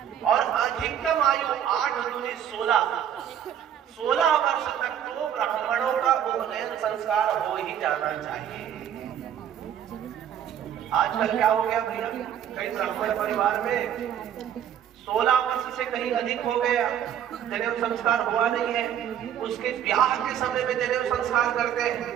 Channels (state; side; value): quieter; left; 9.7 dB